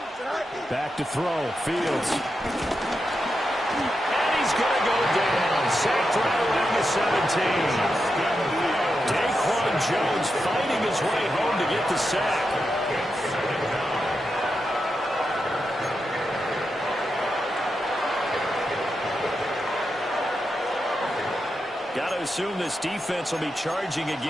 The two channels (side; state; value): both; normal; correlation 0.87